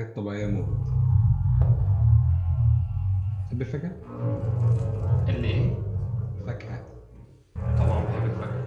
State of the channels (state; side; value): identical; both; correlation 1.00